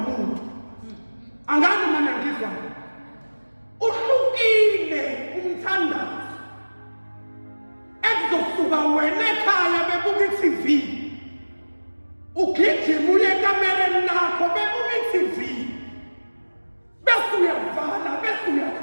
angani mina ngizwa uhlukile umthandazo ekuzosuka wena ekhaya bebuka iTV ugijima uye ekamereni lakho bebuka iTV bese uyavala bese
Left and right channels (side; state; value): both; inverted; correlation -1.00